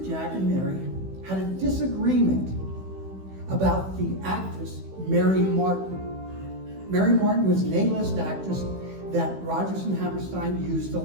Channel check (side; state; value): left; late; 16 ms